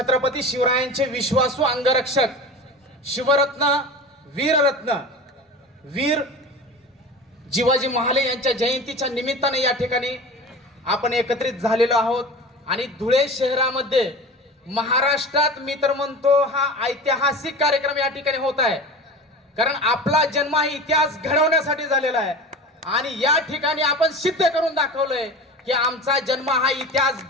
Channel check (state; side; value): normal; both; correlation 0.32